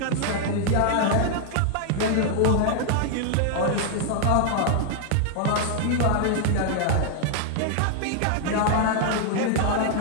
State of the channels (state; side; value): different; both; correlation 0.00